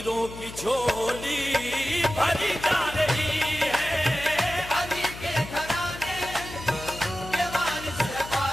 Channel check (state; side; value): noise; left; hum, 13 dB below the sound